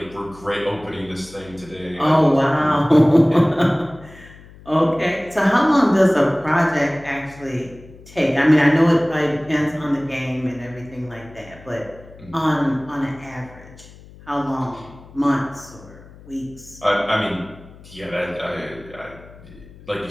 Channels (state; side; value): noise; left; hum, 21 dB below the sound